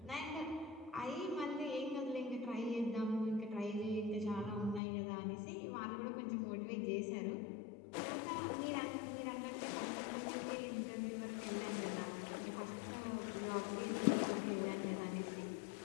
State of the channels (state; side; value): drops out; right; at 4.8 s